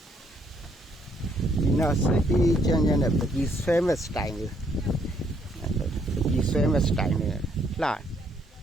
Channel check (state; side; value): normal; both; correlation 0.70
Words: ဒီနာစိတ်ချမ်းချမ်းနဲ့ပကြီးဆွဲမဲ့စတိုင်လေးပကြီးဆွဲမဲ့စတိုင်နဲ့လှ